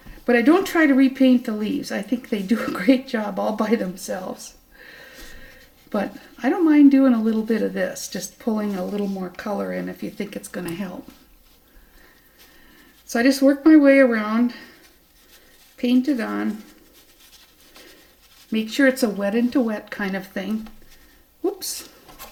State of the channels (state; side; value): identical; both; correlation 1.00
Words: But I don't try to repaint the leaves. I think they do a great job all by themselves. But I don't mind doing a little bit of this, just pulling a little more color in if you think it's going to help. So I just work my way around, paint it on, make sure it's a wet into wet kind of thing. Whoops.